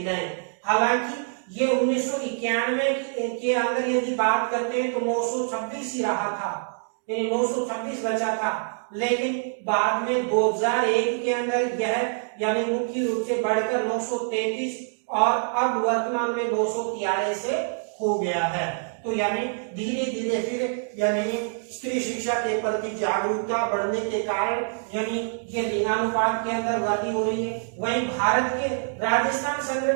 हालांकि ये 1991 के अंदर यदि बात करते हैं तो 926 ही रहा था, यानी 926 बचा था। लेकिन बाद में 2001 के अंदर यह यानी मुख्य रूप से बढ़कर 933 और अब वर्तमान में 243 से हो गया है। तो यानी धीरे धीरे फिर यानी स्त्री शिक्षा के प्रति जागरूकता बढ़ने के कारण यानी ये लिंगानुपात के अंदर वृद्धि हो रही है। वहीं भारत के राजस्थान संग्रह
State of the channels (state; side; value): silent; left; digital silence